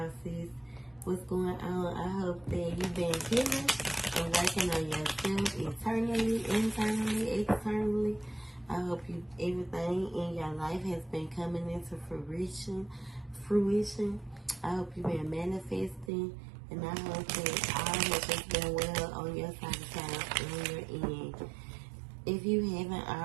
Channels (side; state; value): left; drops out; at 16.1 s